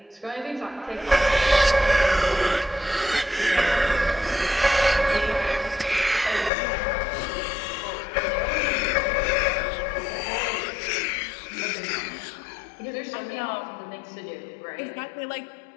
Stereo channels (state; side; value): drops out; right; at 6.5 s